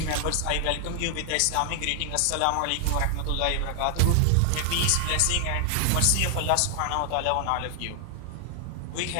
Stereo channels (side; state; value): both; different; correlation 0.00